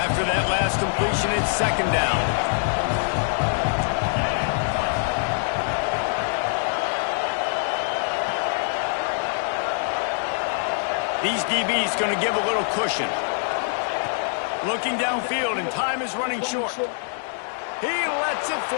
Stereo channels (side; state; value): right; silent; digital silence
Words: that last completion, it's second down. These DBs going to give a little cushion. Looking downfield, and time is running short. He lets it